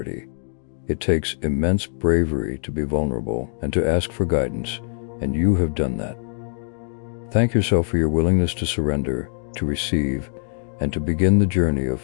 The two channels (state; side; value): silent; right; digital silence